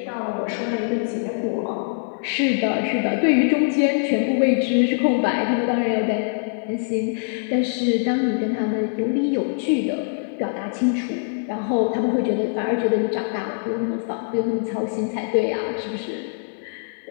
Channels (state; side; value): silent; right; digital silence